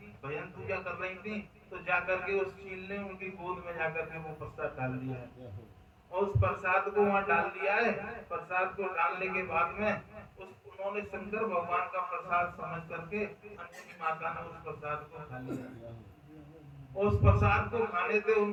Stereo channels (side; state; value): both; identical; correlation 1.00